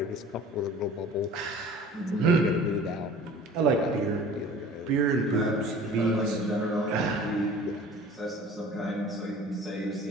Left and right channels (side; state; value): both; normal; correlation 0.45